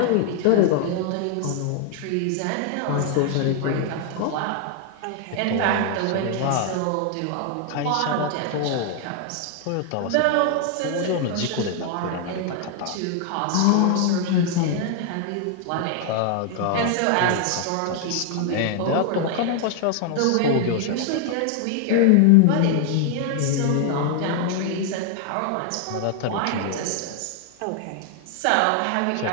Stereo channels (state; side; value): different; both; correlation 0.00